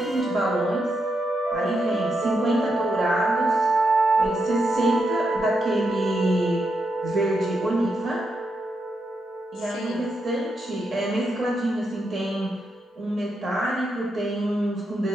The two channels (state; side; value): normal; both; correlation 0.83